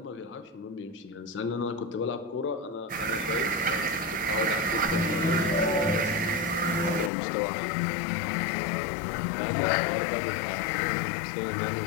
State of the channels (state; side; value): drops out; right; at 7.1 s